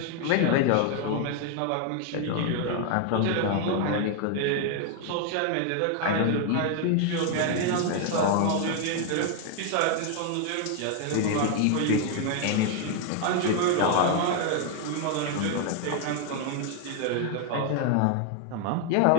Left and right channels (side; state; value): both; different; correlation 0.00